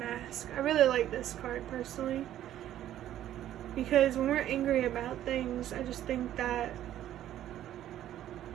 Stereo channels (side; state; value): left; quieter; 12.1 dB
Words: I really like this card personally because when we're angry about things, I just think that